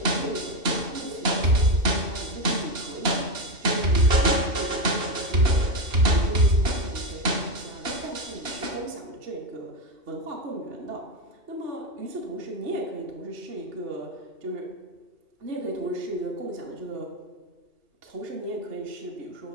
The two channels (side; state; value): left; late; 2.9 ms